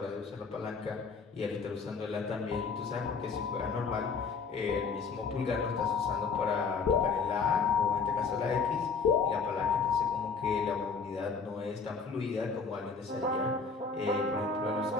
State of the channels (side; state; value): right; quieter; 5.0 dB